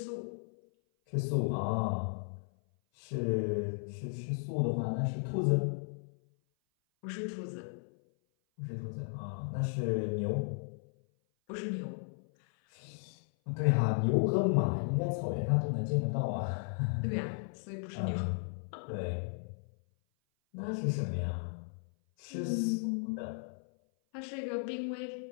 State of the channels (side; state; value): right; silent; 54 dB below the other